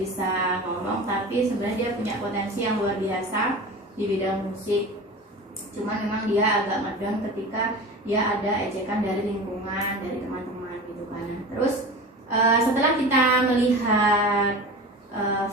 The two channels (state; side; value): normal; both; correlation 0.33